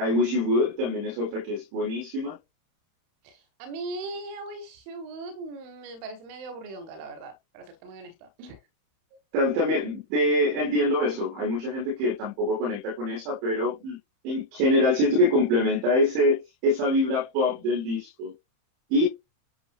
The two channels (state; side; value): late; left; 31 ms